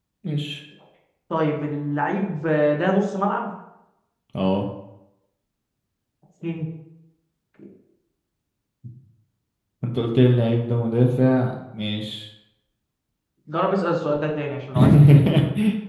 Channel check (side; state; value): both; identical; correlation 1.00